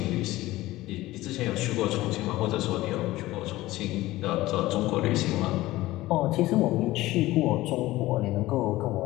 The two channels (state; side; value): quieter; right; 17.4 dB